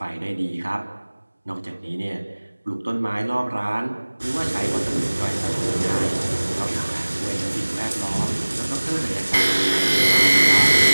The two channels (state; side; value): inverted; both; correlation -1.00